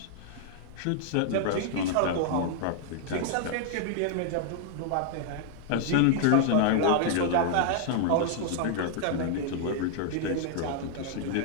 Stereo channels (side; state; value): both; different; correlation 0.00